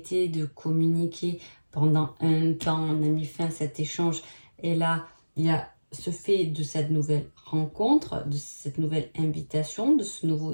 de communiquer pendant un temps, on a mis fin à cet échange. Et là, il y a ce fait de cette nouvelle rencontre, de cette nouvelle invitation, de ce nouveau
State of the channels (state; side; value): inverted; both; correlation -1.00